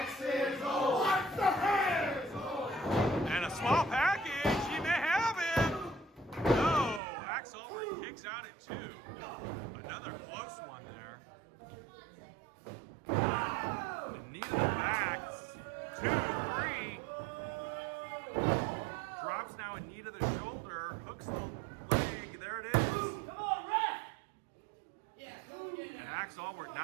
is old. What the hell? And a small package. He may have him. No, Ax Allwardt kicks out at 2. Another close one there. The knee to the back. 2, 3. Drops now a knee to the shoulder. Hooks the leg. There it is. Come on, ref! And Ax Allwardt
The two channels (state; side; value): drops out; left; at 7.0 s